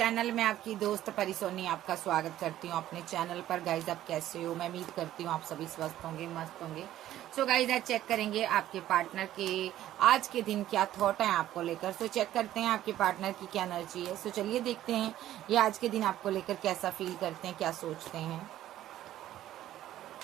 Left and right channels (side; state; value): left; quieter; 13.1 dB